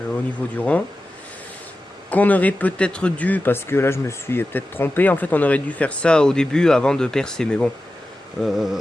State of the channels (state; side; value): normal; both; correlation 0.93